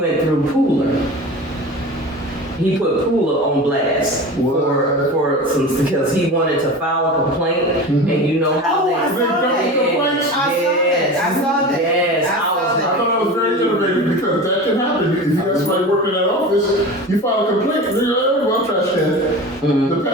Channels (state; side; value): normal; both; correlation 0.32